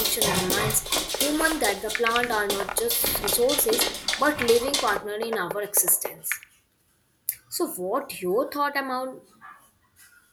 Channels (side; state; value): both; identical; correlation 1.00